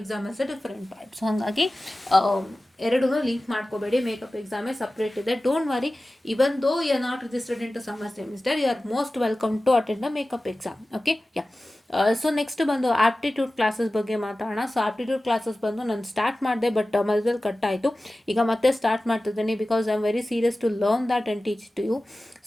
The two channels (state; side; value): normal; both; correlation 0.96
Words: is a different part. So ಹಾಗಾಗಿ ಎರಡೂ link ಮಾಡ್ಕೋಬೇಡಿ. Makeup ಎಕ್ಸಾಮೇ separate ಇದೆ. Don't worry, even though you are not registered into summer semester, you are most welcome to attend the makeup exam. Okay, yeah. So next ಬಂದು aptitude classes ಬಗ್ಗೆ ಮಾತಾಡೋಣ. So aptitude classes ಬಂದು ನಾನು ಸ್ಟಾರ್ಟ್ ಮಾಡಿದೆ, ಬಟ್ ಮಧ್ಯದಲ್ಲಿ ಕಟ್ ಆಯಿತು. ಈಗ ಮತ್ತೆ ಸ್ಟಾರ್ಟ್ ಮಾಡ್ತಿದ್ದೀನಿ because I am very serious to learn that and teach to you.